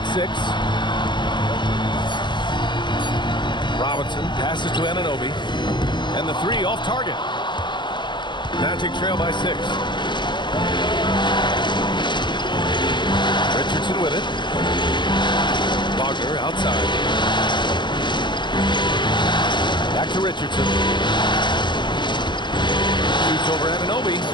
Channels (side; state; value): right; late; 0.22 ms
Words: 6. Robinson passes to Anunoby. And the 3 off target. Magic trail by 6. Richardson with it. Wagner outside. Back to Richardson. Shoots over Anunoby.